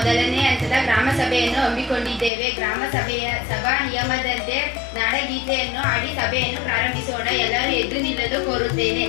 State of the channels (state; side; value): drops out; right; at 2.3 s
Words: ಹಂತದ ಗ್ರಾಮ ಸಭೆಯನ್ನು ಹಮ್ಮಿಕೊಂಡಿದ್ದೇವೆ. ಗ್ರಾಮ ಸಭೆಯ ಸಭಾ ನಿಯಮದಂತೆ ನಾಡಗೀತೆಯನ್ನು ಹಾಡಿ ಸಭೆಯನ್ನು ಪ್ರಾರಂಭಿಸೋಣ. ಎಲ್ಲರೂ ಎದ್ದು ನಿಲ್ಲಲು ಕೋರುತ್ತೇನೆ.